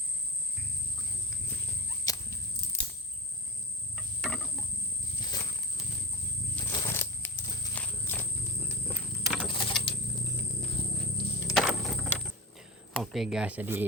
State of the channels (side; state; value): both; normal; correlation 0.24